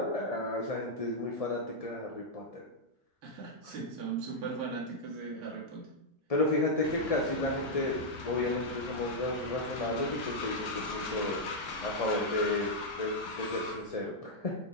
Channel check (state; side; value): late; right; 1.7 ms